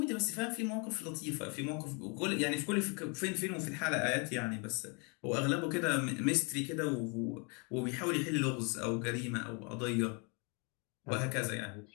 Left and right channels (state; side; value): quieter; right; 33.6 dB